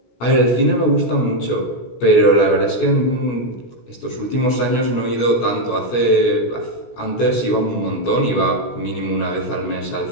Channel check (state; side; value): late; right; 17 ms